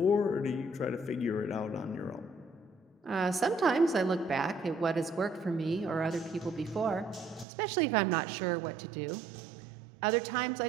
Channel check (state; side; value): drops out; left; at 7.5 s